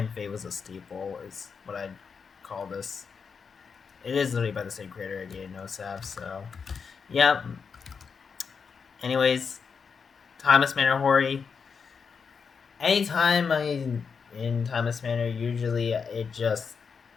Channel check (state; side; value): quieter; right; 5.9 dB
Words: Fate was a steeple is what I'd call this. It is literally by the same creator, again, no sap. So yeah. Anyways, Thomas Manor Hori. Anytime I in Timeless Manor, usually it just